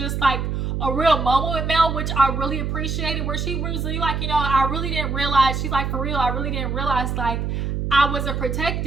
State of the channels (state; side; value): noise; right; hum, 2 dB below the sound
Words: like a real moment with Mel, which I really appreciated, where she was really like, you know, I really didn't realize, she's like, for real, I really didn't realize like I wasn't